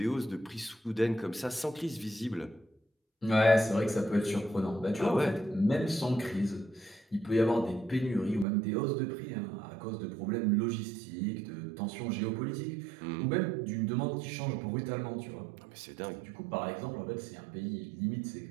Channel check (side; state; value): left; drops out; at 8.5 s